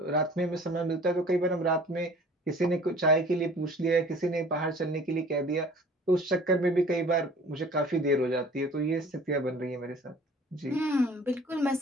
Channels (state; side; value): normal; both; correlation 0.48